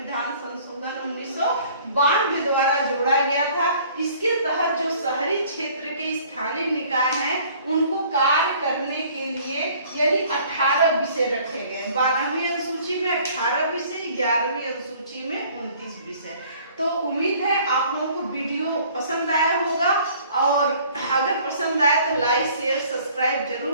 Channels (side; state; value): both; inverted; correlation -0.54